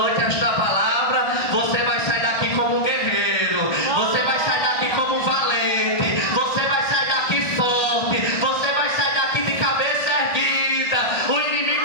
esta palavra: você vai sair daqui como guerreiro, você vai sair daqui como valente, você vai sair daqui forte, você vai sair daqui de cabeça erguida. O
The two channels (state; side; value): late; right; 1.5 ms